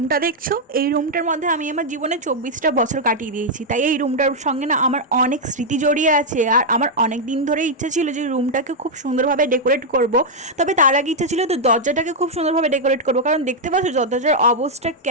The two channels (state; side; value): normal; both; correlation -0.02